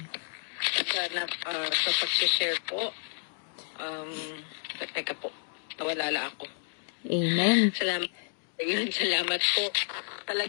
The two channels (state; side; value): silent; right; digital silence